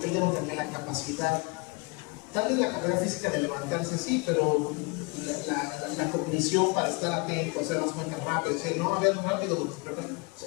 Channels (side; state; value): right; quieter; 30.4 dB